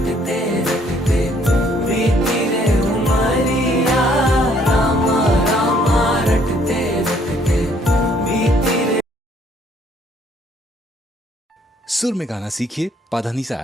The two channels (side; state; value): both; normal; correlation 0.64